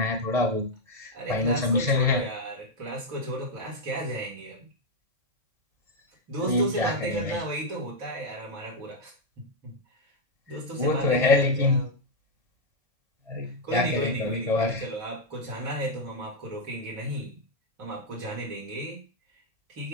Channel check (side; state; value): left; late; 1.6 ms